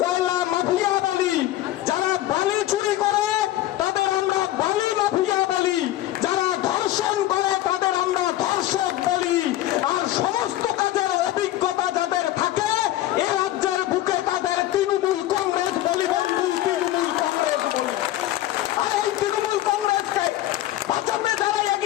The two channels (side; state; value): right; quieter; 14.4 dB